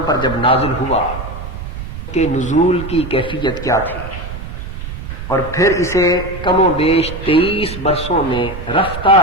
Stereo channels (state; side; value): noise; right; rumble, 9 dB below the sound